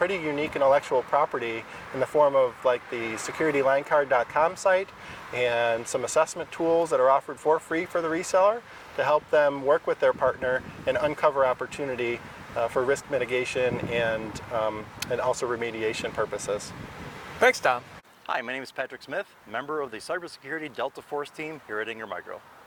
unique intellectual property in the form of like the securitylinecard.com site and some assessment tools that are offered for free for the reseller to help them work with their partner and uncover opportunity for risk mitigation and also remediation purposes. Thanks, Tom. Hi, my name is Patrick Smith, member of the Cybersecurity Delta Force team here at Ingram Micro.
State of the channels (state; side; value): identical; both; correlation 1.00